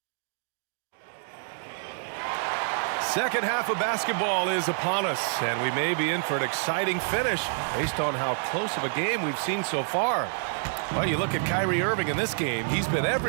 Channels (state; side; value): silent; left; 60 dB below the other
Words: Second half of basketball is upon us, and we may be in for an exciting finish based on how close of a game we've seen so far. Well, you look at Kyrie Irving in this game, he's been